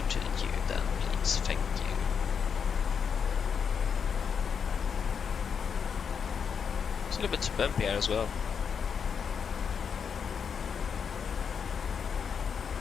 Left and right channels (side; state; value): right; quieter; 6.7 dB